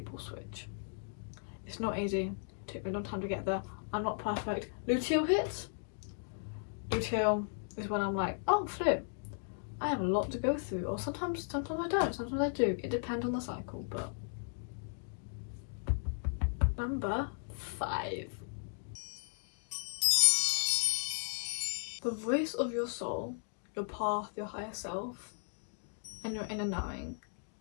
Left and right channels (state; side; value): silent; right; digital silence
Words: switch. It's not easy. It took me a long time to get there. I'm not perfect. Luteal hits. Luteal is when I'm like, oh flip, I have a lot to go through. Or sometimes I don't, sometimes I do. It depends on the cycle, but. Number 5. The voice of your soul, your path, your higher self, and your inner knowing